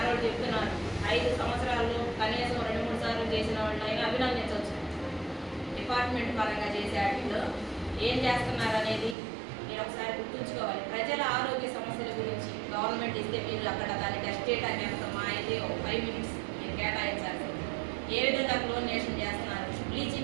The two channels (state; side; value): drops out; left; at 9.2 s